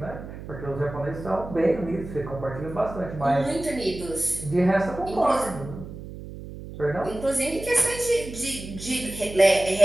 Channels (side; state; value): right; noise; hum, 12 dB below the sound